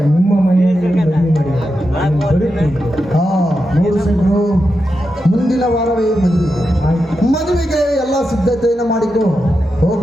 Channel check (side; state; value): both; normal; correlation 0.88